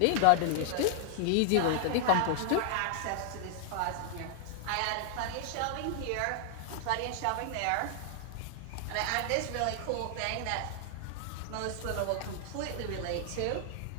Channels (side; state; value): both; different; correlation 0.00